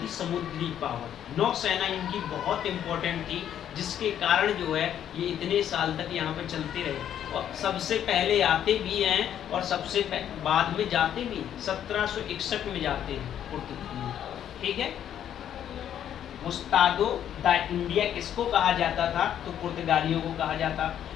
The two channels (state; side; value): quieter; right; 10.1 dB